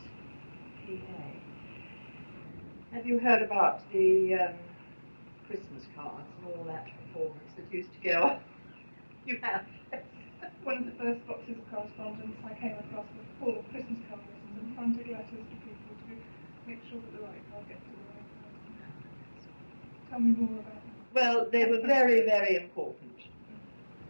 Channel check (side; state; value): both; inverted; correlation -1.00